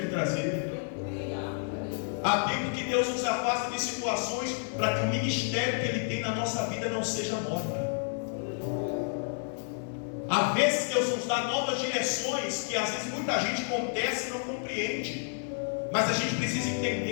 me trazer. Há tempo que Deus nos afasta de situações para que o ministério que Ele tem na nossa vida não seja morto. Há vezes Deus nos dá novas direções que às vezes muita gente contesta e não compreende. Mas a gente precisa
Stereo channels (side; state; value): right; silent; 58 dB below the other